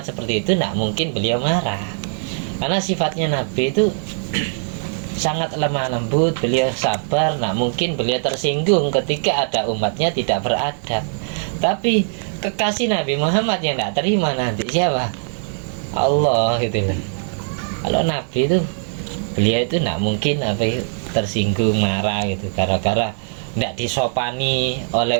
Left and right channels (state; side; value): silent; left; digital silence